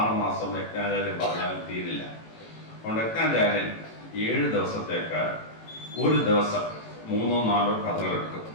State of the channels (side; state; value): right; late; 18 ms